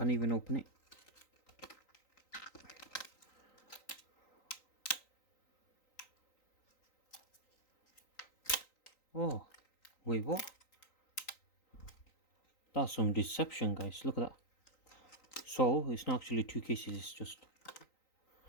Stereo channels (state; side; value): late; right; 3.9 ms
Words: even open it. Oh, wait, what? That's some deception, guys. Look at that. So it's not actually two cases, it's just